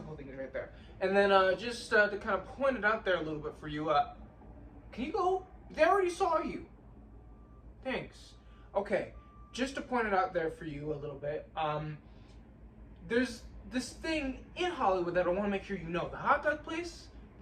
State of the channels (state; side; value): identical; both; correlation 1.00